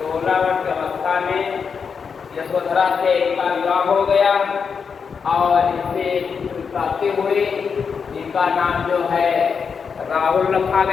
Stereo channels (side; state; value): right; quieter; 6.0 dB